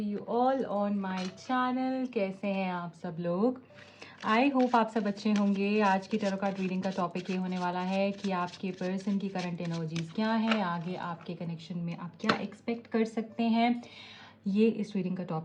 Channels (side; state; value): both; identical; correlation 1.00